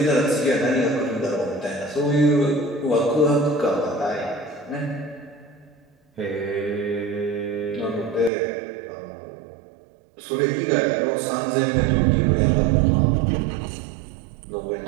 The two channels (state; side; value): drops out; left; at 8.3 s